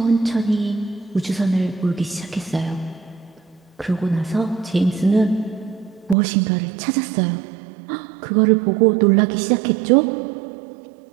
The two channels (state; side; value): drops out; left; at 6.2 s